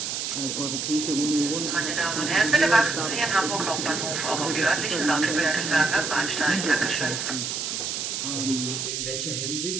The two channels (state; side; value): noise; right; hiss, 3 dB below the sound